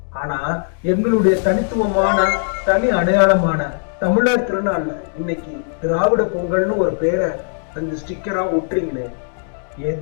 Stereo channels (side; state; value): right; silent; digital silence